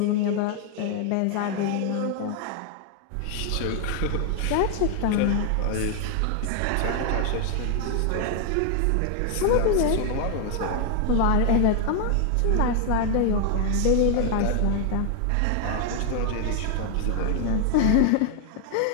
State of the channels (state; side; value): different; both; correlation 0.00